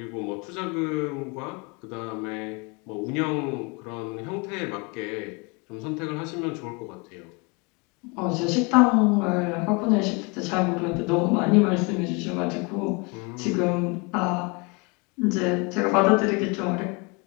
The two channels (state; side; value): quieter; right; 29.4 dB